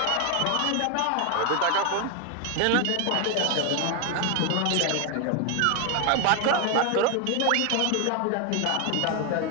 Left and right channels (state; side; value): different; both; correlation 0.01